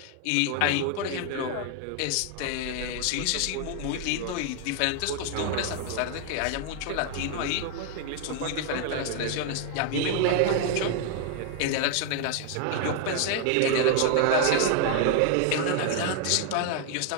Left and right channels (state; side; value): different; both; correlation 0.00